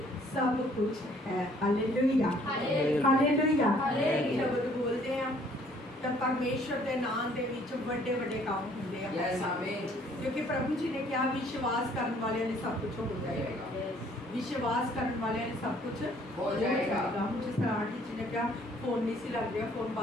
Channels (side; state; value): both; normal; correlation 0.60